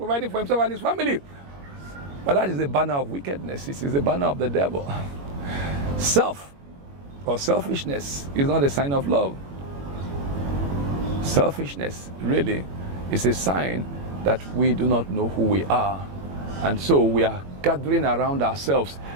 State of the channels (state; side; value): late; left; 21 ms